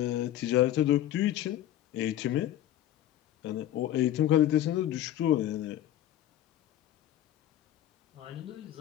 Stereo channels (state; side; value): quieter; right; 12.4 dB